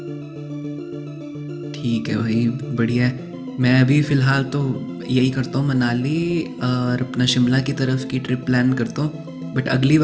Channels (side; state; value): both; identical; correlation 1.00